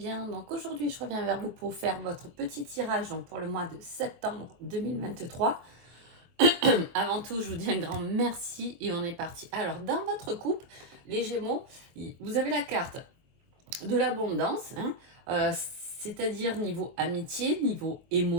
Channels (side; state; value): left; late; 23 ms